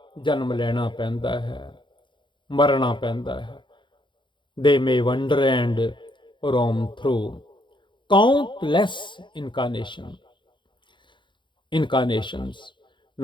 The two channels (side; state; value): right; late; 0.23 ms